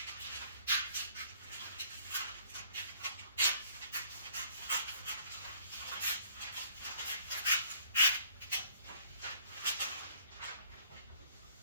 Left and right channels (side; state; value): both; inverted; correlation -0.60